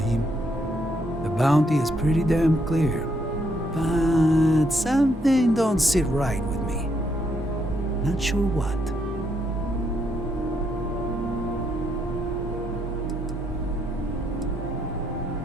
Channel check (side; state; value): both; normal; correlation 0.75